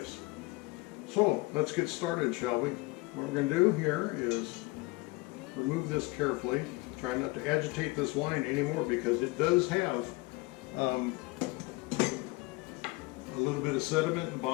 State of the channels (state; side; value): quieter; right; 23.6 dB